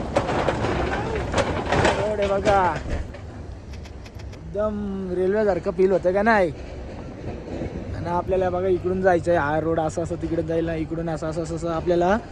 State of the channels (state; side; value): identical; both; correlation 1.00